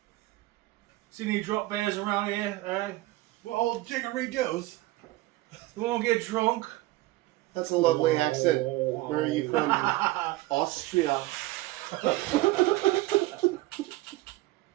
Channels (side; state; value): left; quieter; 18.7 dB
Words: See any drop bears around here? Well, jiggery-doos. You won't get drunk? That's a lovely accent. Where are you from? Austria.